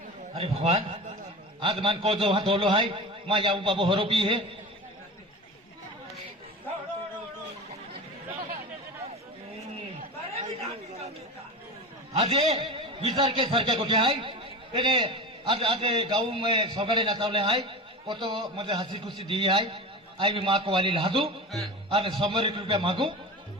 अरे भगवान आज मान को जो वहां धोलो है मां याऊ बाबू होरो पी है आज ये विचार के सर के गोटे है तेरे आज आज गाँव में सगड़े नचावले है वो तो मुझे हंसी खुशी दी है आई भी माँ को वाली लादू और 100 रुपया मांगू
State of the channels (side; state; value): both; normal; correlation 0.29